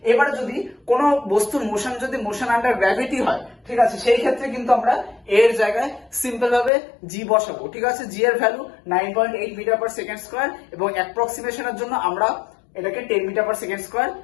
এবারে যদি কোনো বস্তুর মোশন যদি মোশন আন্ডার গ্র্যাভিটি হয়, ঠিক আছে, সেই ক্ষেত্রে কিন্তু আমরা এর জায়গায় সিম্পল ভাবে g বসাবো, ঠিক আছে। g এর value 9.8 metre per second square এবং অ্যাপ্রক্সিমেশনের জন্য আমরা এটাকে 10 মিটার পার সেকেন্ড স্কয়ার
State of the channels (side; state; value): right; drops out; at 6.7 s